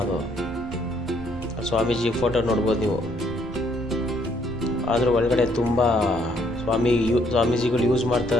ಅದು. ಸ್ವಾಮೀಜಿ ಫೋಟೋ ನೋಡ್ಬೋದು ನೀವು. ಆದರೂ ಒಳಗಡೆ ತುಂಬ ಸ್ವಾಮೀಜಿಗಳು ಯೂಸ್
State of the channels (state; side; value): noise; right; rumble, 14 dB below the sound